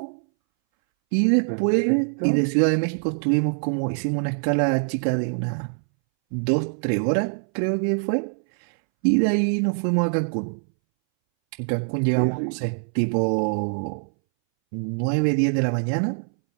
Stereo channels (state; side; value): silent; left; 62 dB below the other